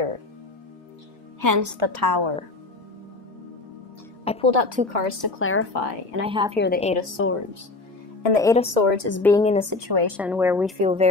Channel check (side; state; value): right; quieter; 3.3 dB